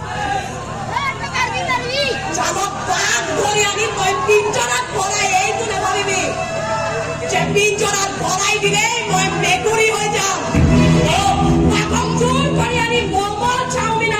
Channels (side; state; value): both; identical; correlation 1.00